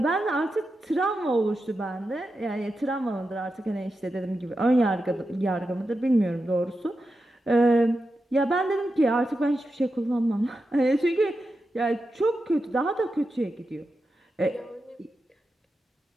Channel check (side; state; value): both; normal; correlation 0.89